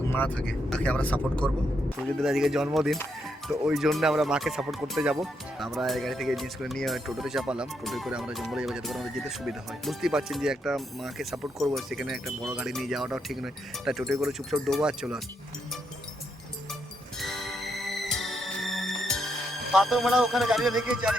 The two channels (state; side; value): normal; both; correlation 0.79